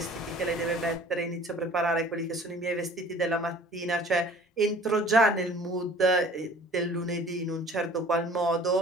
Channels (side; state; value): both; normal; correlation 0.48